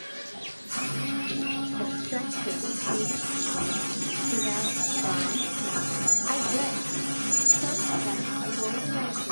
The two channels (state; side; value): inverted; both; correlation -1.00